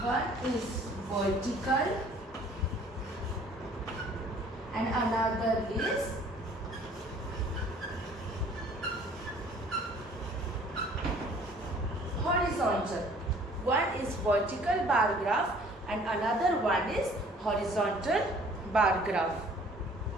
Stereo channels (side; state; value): both; normal; correlation 0.54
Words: One is vertical and another is horizontal. One is vertical bar graph and another one is horizontal bar graph.